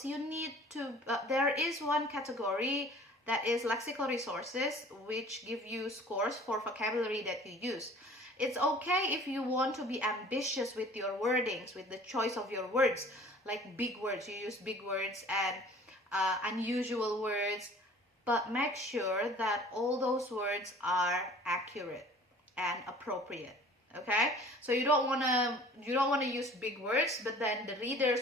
you need to there is one category that is lexical resources, which give you scores for vocabulary that you use. It's okay if you want to be ambitious with your wordings, with the choice of your words, like big words. You use big words and unusual words, but make sure that all those words are accurate and appropriate. Okay, so you don't want to use big words, but then the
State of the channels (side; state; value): both; normal; correlation 0.49